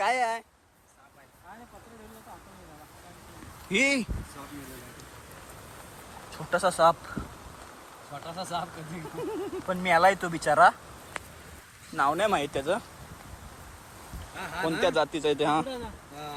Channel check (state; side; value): identical; both; correlation 1.00